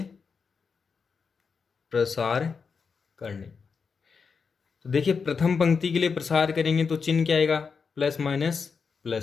प्रसार करने। तो देखिए प्रथम पंक्ति के लिए प्रसार करेंगे तो चिन्ह क्या आएगा? प्लस माइनस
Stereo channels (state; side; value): quieter; right; 5.5 dB